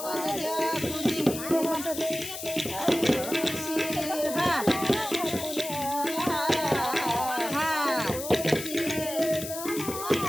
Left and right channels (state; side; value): noise; left; hiss, 8 dB below the sound